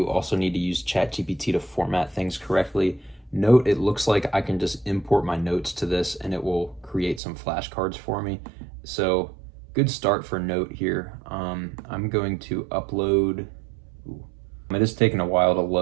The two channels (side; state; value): left; drops out; at 7.2 s